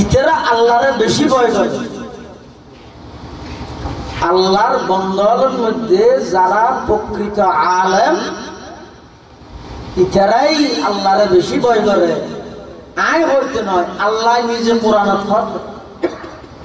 ইতারা আল্লাহরে বেশি ভয় করে। আল্লাহর বান্দাদের মধ্যে যারা প্রকৃত আলেম ইতারাই আল্লাহরে বেশি ভয় করে। আয় বলতে নয়, আল্লাহ নিজে কোরআনে ফরমান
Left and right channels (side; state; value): both; identical; correlation 1.00